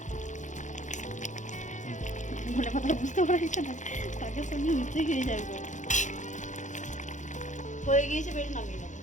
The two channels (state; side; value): late; right; 0.36 ms